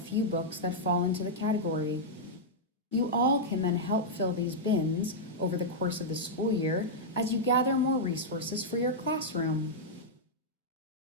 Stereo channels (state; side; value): normal; both; correlation -0.07